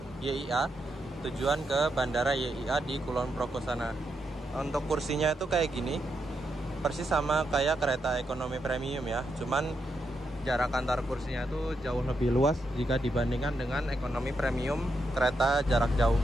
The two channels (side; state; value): both; normal; correlation 0.83